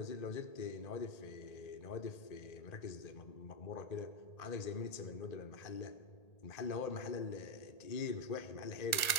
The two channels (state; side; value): late; right; 1.8 ms